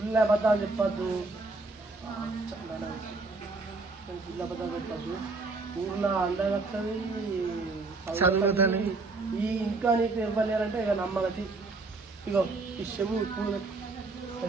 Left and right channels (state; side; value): quieter; left; 3.6 dB